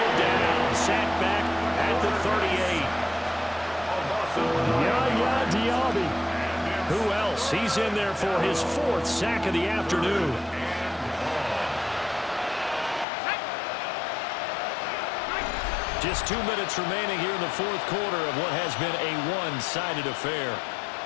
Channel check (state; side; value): drops out; right; at 13.1 s